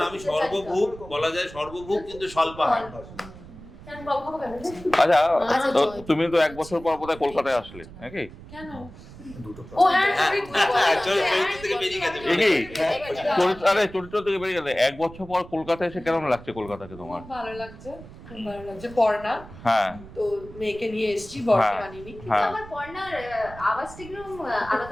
আমি সর্বভূক বলা যায়, সর্বভূক কিন্তু স্বল্পাহার। আচ্ছা, তো তুমি তো 1 বছর পর বোধহয় কলকাতায় আসলে নাকি? কেন? ও হ্যাঁ, চরিত্র থেকে বেরিয়ে গেছে। আরে চরিত্র থেকে বেরিয়ে গেলে 1 বছর পর কলকাতায় এসে কেমন লাগছে কলকাতাকে তোমার? খুব ভালো লাগছে, খুব ভালো লাগছে। পড়না, হ্যাঁ, তো মেয়েকে নিয়ে এসেছি, বরকে আনিনি। কিন্তু আমার পর্ণার আওয়াজটা একদম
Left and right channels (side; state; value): right; noise; rumble, 17 dB below the sound